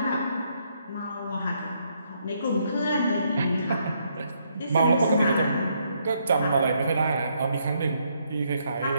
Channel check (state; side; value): inverted; both; correlation -0.73